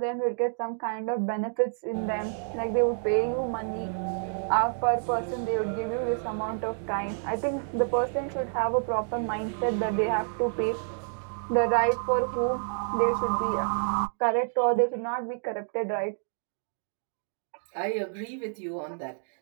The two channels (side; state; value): left; silent; digital silence